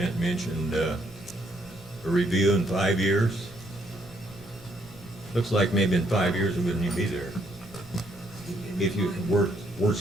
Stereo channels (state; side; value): normal; both; correlation 0.71